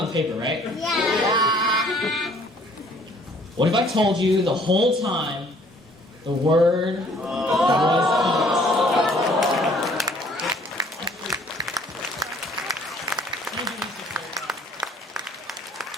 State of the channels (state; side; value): normal; both; correlation 0.58